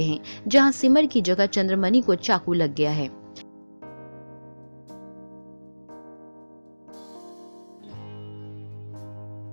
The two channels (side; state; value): both; inverted; correlation -1.00